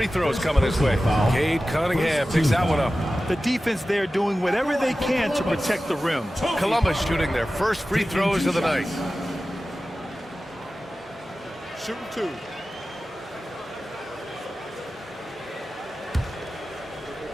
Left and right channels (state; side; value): normal; both; correlation 0.95